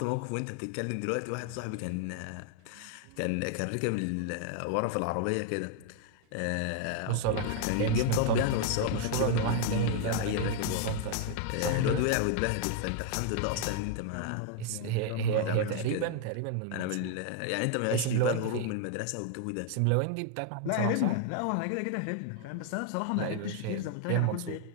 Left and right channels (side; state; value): both; different; correlation 0.00